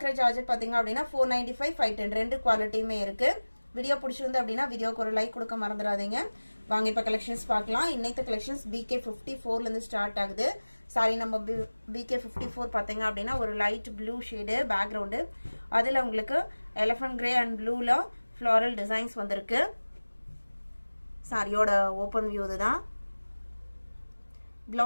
Georgette பாத்தீங்க அப்படினா 495 510 ரெண்டு குவாலிட்டியுமே இருக்கு. வீடியோ பிடிச்சிருந்து அப்படினா வீடியோக்கு ஒரு லைக் கொடுக்க மறந்துடாதீங்க. வாங்க இப்ப கலெக்ஷன்ஸ் பார்க்கலாம். இன்னைக்கு கலெக்ஷன்ஸ் BK54 ல இருந்து ஸ்டார்ட் ஆகுது. சாரி நம்ம BK54 பாத்தீங்க அப்படினா ஒரு லைட் ப்ளூ ஷேட் பேக்ரவுண்ட். அதுல உங்களுக்கு எலிஃபண்ட் கிரே அண்ட் ப்ளூல ஃப்ளோரல் டிசைன்ஸ் வந்திருக்கு. சாரியோட ஓபன் வியூ இதுதான்.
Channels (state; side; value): inverted; both; correlation -1.00